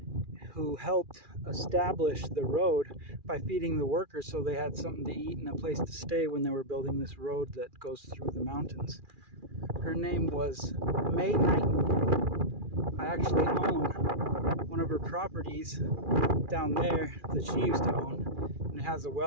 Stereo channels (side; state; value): left; late; 2.4 ms